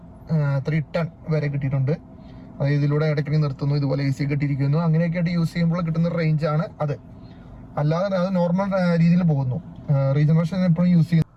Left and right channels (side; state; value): both; identical; correlation 1.00